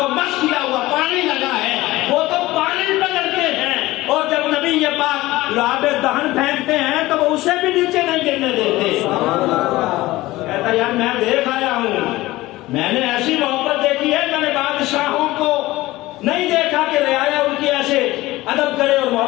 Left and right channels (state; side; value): quieter; right; 18.3 dB